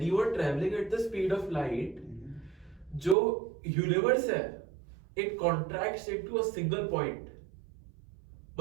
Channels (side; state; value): left; drops out; at 3.2 s